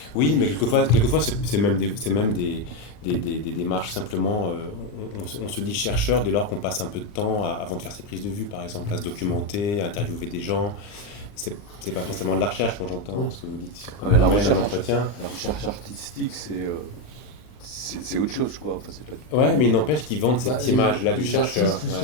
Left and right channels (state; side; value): late; right; 39 ms